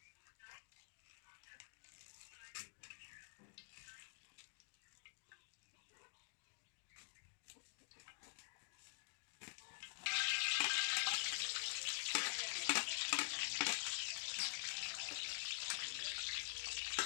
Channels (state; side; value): silent; right; digital silence